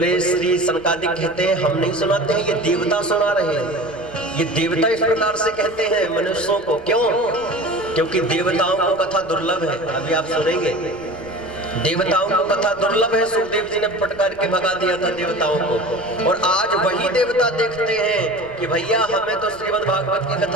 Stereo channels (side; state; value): left; noise; rumble, 23 dB below the sound